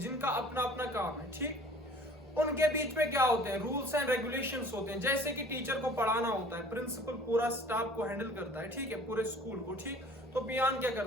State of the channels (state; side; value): normal; both; correlation 0.49